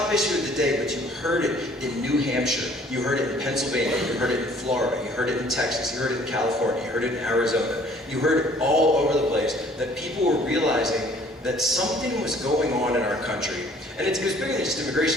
issue of the day, but you heard it in New Hampshire, you heard it in Pennsylvania, you heard it in Florida, you heard it in Texas, you heard it in California, you heard it in Arizona. You heard it all over the place, that people were realizing that something was going on in our country. And it was bigger than just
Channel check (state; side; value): normal; both; correlation 0.56